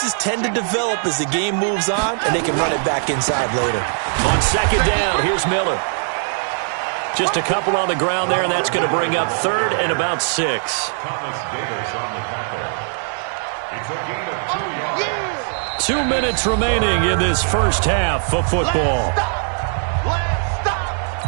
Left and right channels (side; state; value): left; silent; 66 dB below the other